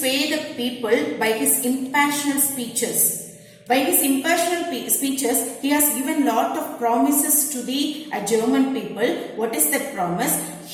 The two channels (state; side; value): identical; both; correlation 1.00